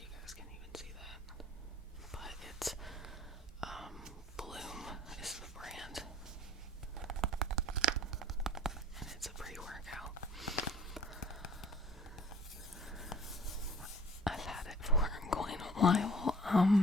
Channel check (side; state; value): both; normal; correlation 0.50